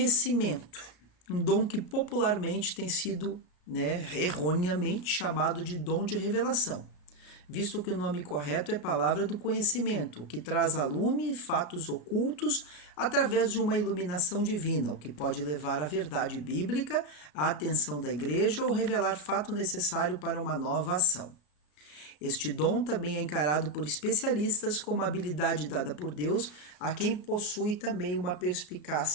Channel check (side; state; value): right; late; 34 ms